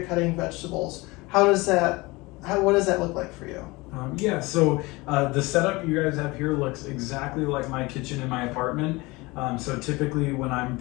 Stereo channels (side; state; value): right; quieter; 23.0 dB